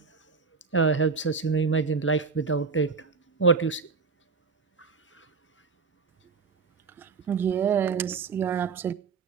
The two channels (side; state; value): left; quieter; 5.0 dB